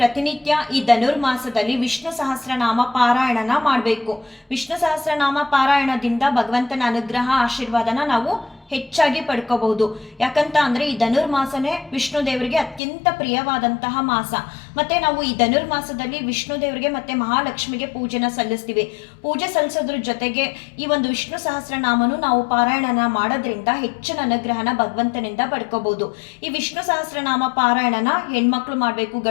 ಈ ಧನುರ್ಮಾಸದಲ್ಲಿ ವಿಷ್ಣು ಸಹಸ್ರನಾಮ ಪಾರಾಯಣನ ಮಾಡಬೇಕು. ವಿಷ್ಣು ಸಹಸ್ರನಾಮ ಪಾರಾಯಣದಿಂದ ಭಗವಂತನ ಅನುಗ್ರಹ ಆಶೀರ್ವಾದನ ನಾವು ಹೆಚ್ಚಾಗಿ ಪಡ್ಕೋಬಹುದು. ಯಾಕಂತ ಅಂದ್ರೆ ಈ ಧನುರ್ಮಾಸನೇ ವಿಷ್ಣು ದೇವರಿಗೆ ಅತ್ಯಂತ ಪ್ರಿಯವಾದಂತಹ ಮಾಸ. ಮತ್ತೆ ನಾವು ಈ ಧನುರ್ಮಾಸದಲ್ಲಿ ವಿಷ್ಣು ದೇವರಿಗೆ ಮತ್ತೆ ಮಹಾಲಕ್ಷ್ಮಿಗೆ ಪೂಜೆನ ಸಲ್ಲಿಸ್ತೀವಿ. ಪೂಜೆ ಸಲ್ಲಿಸೋದ್ರ ಜೊತೆಗೆ ಈ ಒಂದು ವಿಷ್ಣು ಸಹಸ್ರನಾಮನು ನಾವು ಪಾರಾಯಣನ ಮಾಡೋದ್ರಿಂದ ಹೆಚ್ಚಿನ ಅನುಗ್ರಹನ ಭಗವಂತನಿಂದ ಪಡ್ಕೋಬಹುದು. ಈ ವಿಷ್ಣು ಸಹಸ್ರನಾಮ ಪಾರಾಯಣನ ಹೆಣ್ಮಕ್ಳು ಮಾಡಬೇಕು,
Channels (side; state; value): right; drops out; at 12.8 s